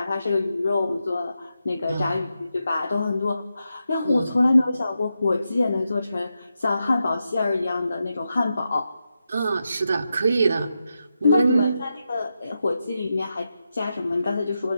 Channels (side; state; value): both; inverted; correlation -0.87